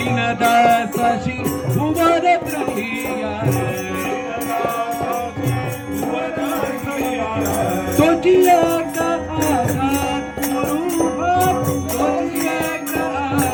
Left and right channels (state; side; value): identical; both; correlation 1.00